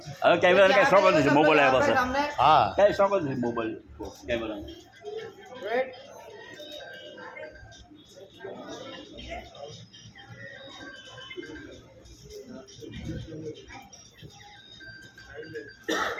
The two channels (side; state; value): both; identical; correlation 1.00